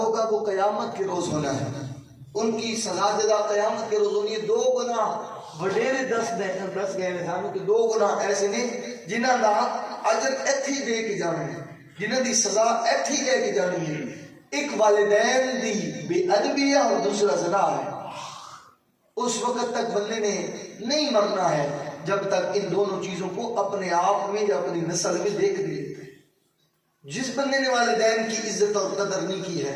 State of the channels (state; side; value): identical; both; correlation 1.00